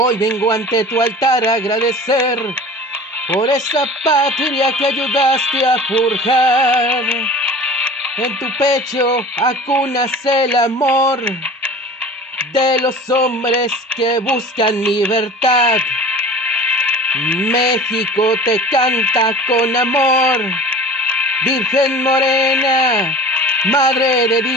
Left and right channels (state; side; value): normal; both; correlation 0.40